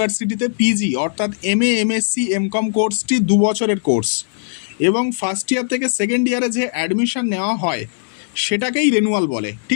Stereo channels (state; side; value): silent; right; digital silence